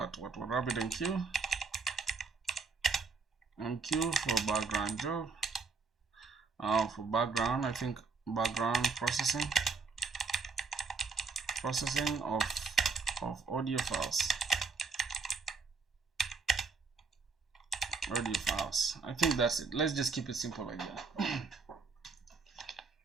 what RabbitMQ for background job. For background, I think background processing of audio files. I think that's it. Let's just keep it simple like that.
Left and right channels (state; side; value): quieter; left; 4.6 dB